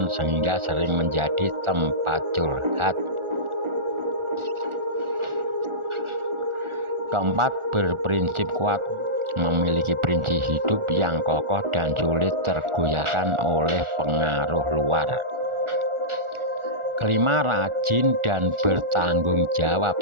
sehingga sering menjadi tempat curhat. Keempat, berprinsip kuat, memiliki prinsip hidup yang kokoh dan sulit tergoyahkan oleh pengaruh luar. Kelima, rajin dan bertanggung jawab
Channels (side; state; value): left; late; 1.4 ms